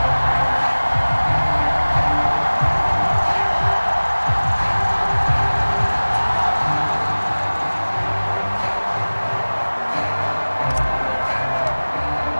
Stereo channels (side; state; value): both; inverted; correlation -1.00